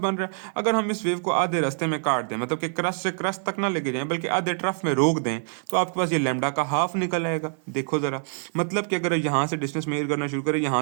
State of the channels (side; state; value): left; silent; 61 dB below the other